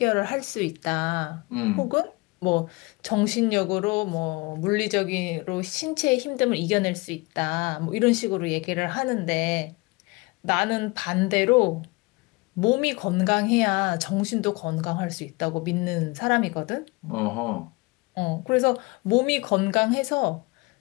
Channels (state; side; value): quieter; right; 25.3 dB